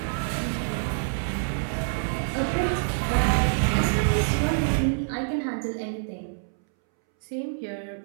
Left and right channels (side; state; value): left; silent; 61 dB below the other